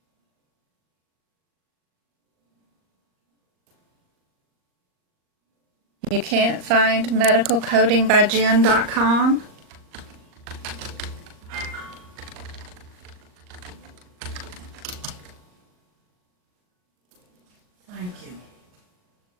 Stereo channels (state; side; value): late; left; 39 ms